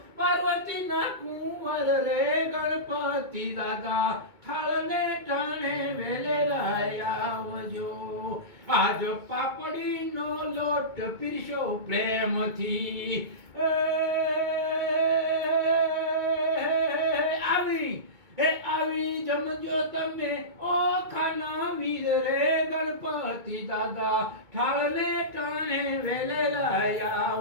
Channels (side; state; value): left; late; 2.2 ms